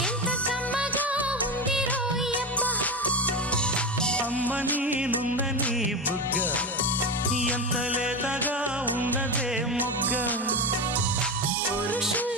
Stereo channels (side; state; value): both; normal; correlation 0.19